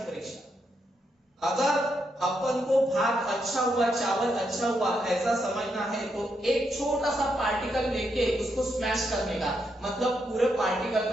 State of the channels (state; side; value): normal; both; correlation 0.80